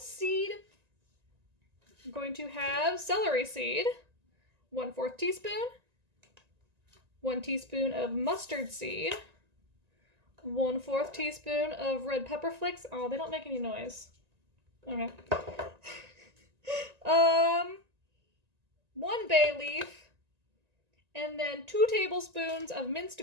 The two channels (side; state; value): left; late; 1.9 ms